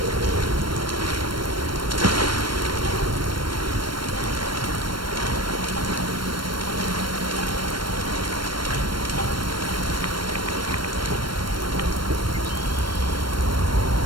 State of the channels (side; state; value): left; late; 0.72 ms